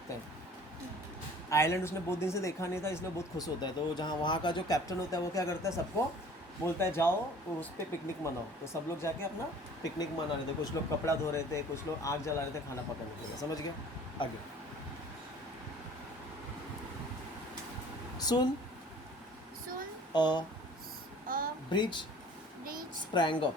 है। आइलैंड उसने बहुत दिन से देखा नहीं था, इसलिए बहुत खुश होता है। तो जहाँ वहाँ का जो कैप्टन होता है वो क्या करता है, सबको बोलता है जाओ तो उस पर पिकनिक मनाओ। तो सब लोग जाके अपना पिकनिक मना रहे थे, कुछ लोग कपड़ा धो रहे थे, कुछ लोग आग जला रहे थे खाना पकाने के लिए। समझ गया, आगे सुन। Soon a a bridge breach sprang up,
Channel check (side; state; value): both; normal; correlation 0.49